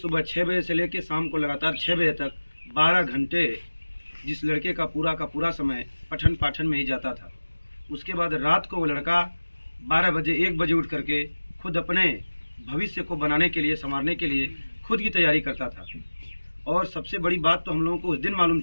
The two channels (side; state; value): both; inverted; correlation -1.00